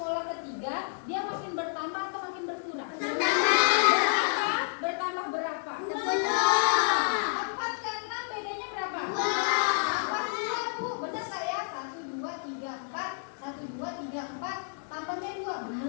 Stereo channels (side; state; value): right; silent; digital silence